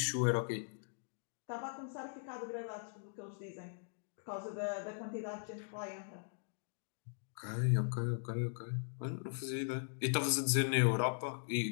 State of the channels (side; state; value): right; silent; digital silence